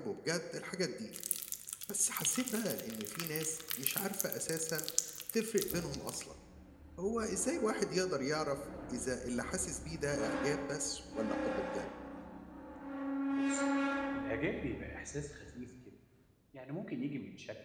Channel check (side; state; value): both; identical; correlation 1.00